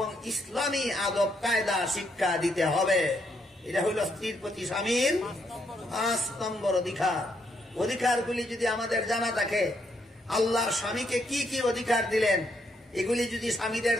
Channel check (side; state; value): both; normal; correlation 0.75